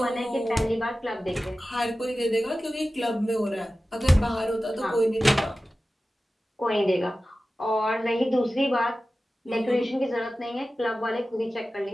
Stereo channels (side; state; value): both; normal; correlation 0.95